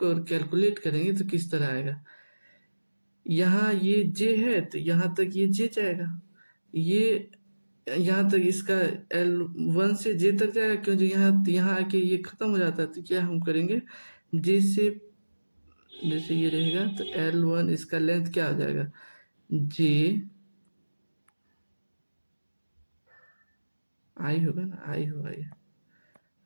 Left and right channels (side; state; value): both; inverted; correlation -1.00